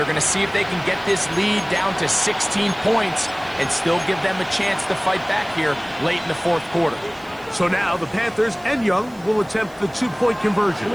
going to see if they can get this lead down to 16 points and still give them a chance to fight back here late in the fourth quarter. So now the Panthers and Young will attempt the 2-point conversion.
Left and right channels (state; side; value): noise; right; hiss, 27 dB below the sound